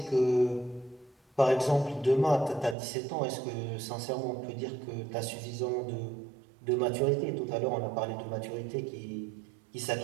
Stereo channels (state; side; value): drops out; left; at 2.8 s